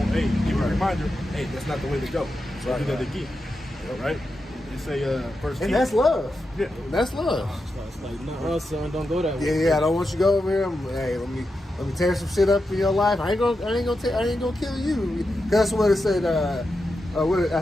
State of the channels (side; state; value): both; normal; correlation 0.88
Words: hey, give you a reminder, hey, that's not the way to go. So do that again. Right? They say verse 10. And that's love. Yeah. That's love. It's like, no, son, don't go that way. Yeah, I don't want you to go over here. Hey, let me tear some shit up in your life. I ain't gonna kill you. That's what it said. I